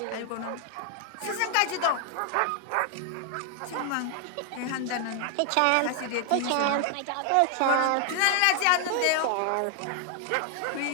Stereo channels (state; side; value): different; both; correlation 0.00